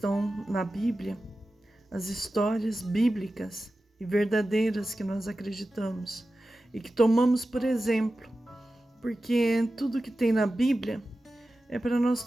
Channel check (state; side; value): normal; both; correlation 0.94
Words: na Bíblia, as histórias bíblicas e verdadeiras que nós acreditamos e que tomamos por exemplo, porque tudo que tem na Bíblia é para nós